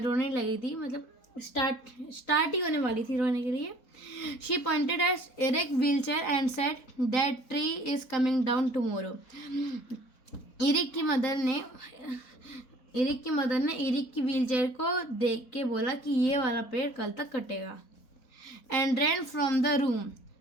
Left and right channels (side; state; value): right; late; 3.9 ms